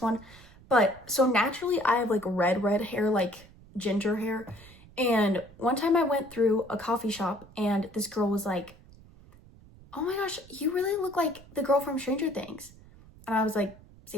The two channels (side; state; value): right; noise; rumble, 22 dB below the sound